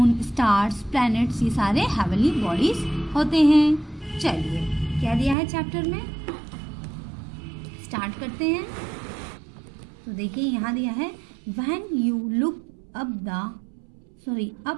स्टार्स, प्लैनेट्स, ये सारे हेवनली बॉडीज होते हैं। चलिए, क्या दिया है चैप्टर में, स्टार्ट करते हैं। तो देखिए यहाँ दिया है, when you look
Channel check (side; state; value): left; drops out; at 5.4 s